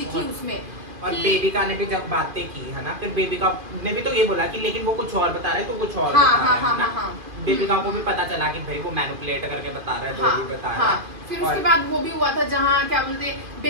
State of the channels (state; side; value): late; left; 2.5 ms